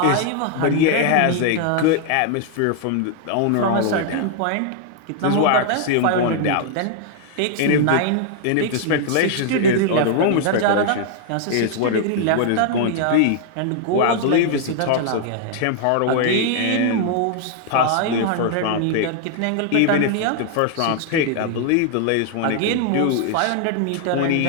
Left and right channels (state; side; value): different; both; correlation 0.00